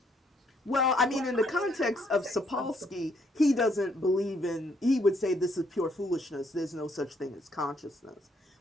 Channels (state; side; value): normal; both; correlation 0.70